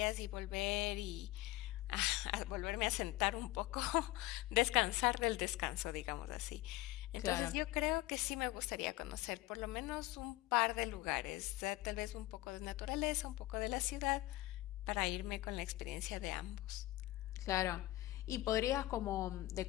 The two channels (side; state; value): right; quieter; 17.6 dB